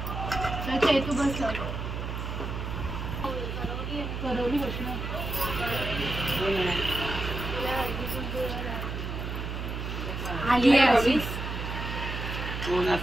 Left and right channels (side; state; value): right; noise; hum, 5 dB below the sound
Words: तू बस करवली बसणार आली